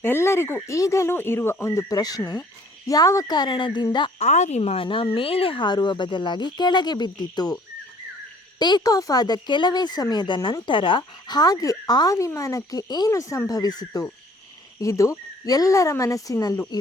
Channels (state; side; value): normal; both; correlation 0.56